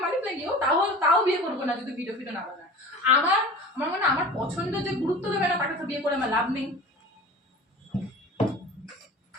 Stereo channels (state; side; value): normal; both; correlation 0.38